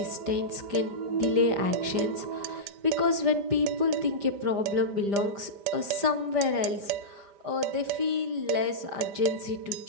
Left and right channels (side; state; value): left; late; 5.0 ms